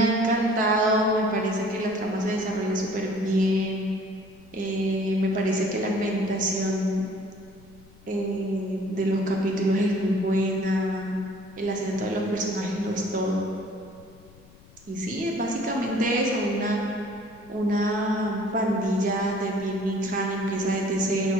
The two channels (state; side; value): noise; left; rumble, 25 dB below the sound